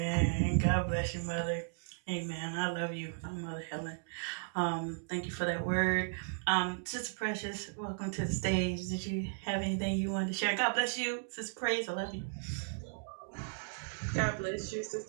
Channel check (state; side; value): silent; left; digital silence